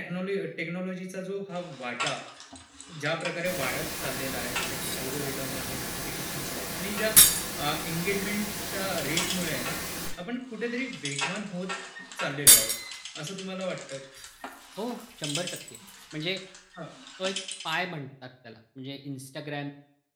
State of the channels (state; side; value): identical; both; correlation 1.00